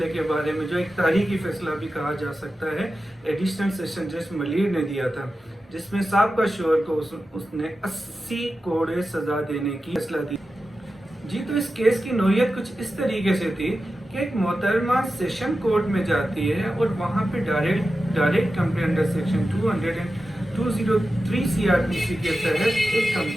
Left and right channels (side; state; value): both; normal; correlation 0.92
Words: के बारे में, जो एक तारीखी फैसला भी कहा जा सकता है, एडिशनल सेशन जज मलिर ने दिया था, जिसमें साबका शोहर को उसने 80 करोड़ सजा देने की फैसला दी। जी, तो इस केस की नोयत कुछ इस तरीके से थी कि एक मोहतरमा सेशन कोर्ट में जाती है और वहाँ पे direct complaint under section 203 CrPC के तहत एक